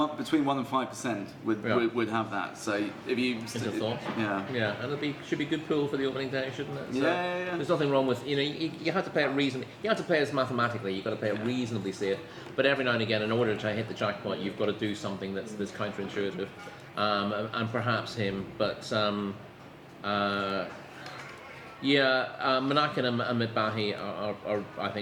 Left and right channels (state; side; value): identical; both; correlation 1.00